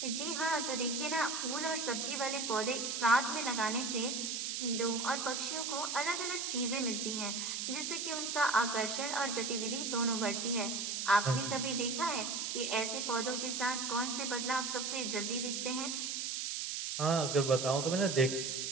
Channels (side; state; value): right; noise; hiss, 2 dB below the sound